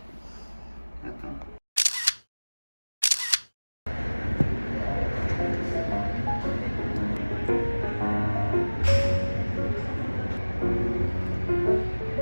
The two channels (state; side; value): inverted; both; correlation -1.00